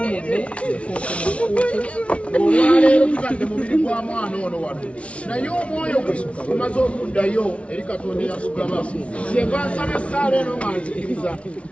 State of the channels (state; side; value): late; right; 0.062 ms